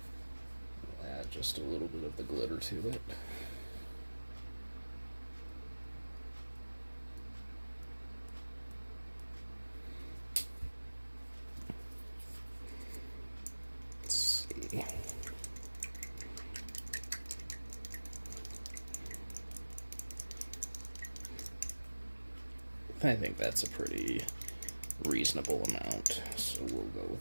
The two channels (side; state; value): both; inverted; correlation -1.00